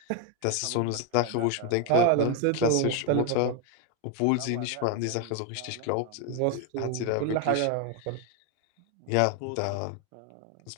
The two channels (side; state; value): both; different; correlation 0.01